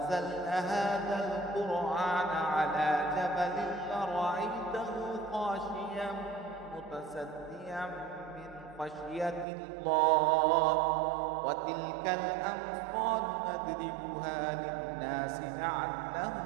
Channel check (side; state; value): left; drops out; at 9.5 s